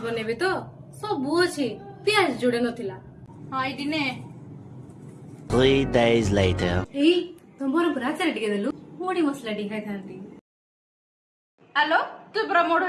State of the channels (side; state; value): both; identical; correlation 1.00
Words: ବନେଇବି ତ ସବୁ ଅଛି ପିଆଜ ଯୋଡେ ନଥିଲା। ହଁ ଏଇଠି ନେ। 3 days later. ଏଇ ତମର ପୁରା ଆଚାର ଟିକେ ଦେଲୁ ମୁଢି ମସଲା ଟିକେ ଖାଇଥାନ୍ତି। ଆଲୋ ତୁ ପୁରା ମୋଢ